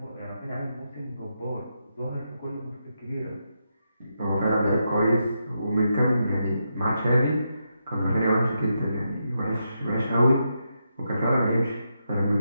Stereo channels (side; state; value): both; inverted; correlation -0.83